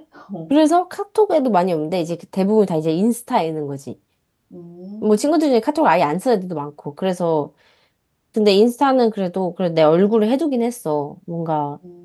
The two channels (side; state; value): both; identical; correlation 1.00